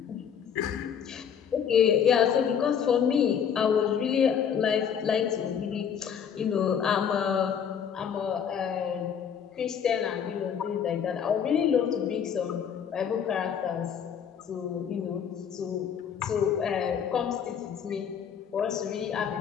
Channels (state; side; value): quieter; right; 7.9 dB